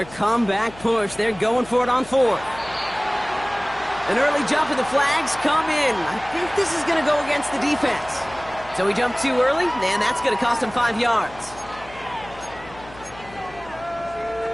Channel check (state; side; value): noise; left; hum, 20 dB below the sound